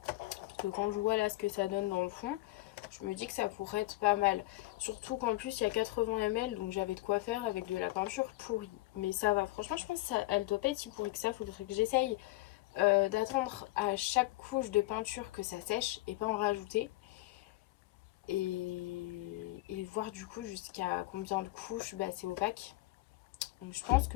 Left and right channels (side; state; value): right; quieter; 19.3 dB